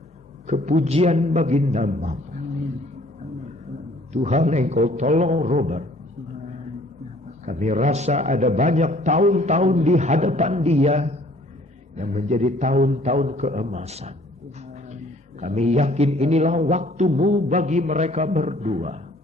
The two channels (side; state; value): both; normal; correlation 0.57